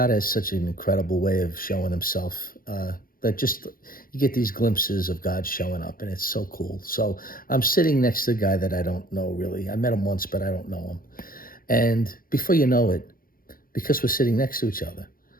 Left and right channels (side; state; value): right; late; 0.42 ms